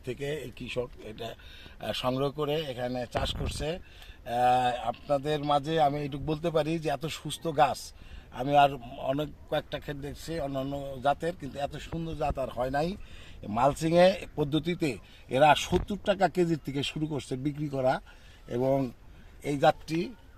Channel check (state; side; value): identical; both; correlation 1.00